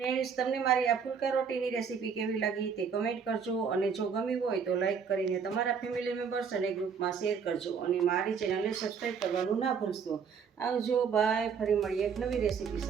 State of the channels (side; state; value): left; quieter; 6.4 dB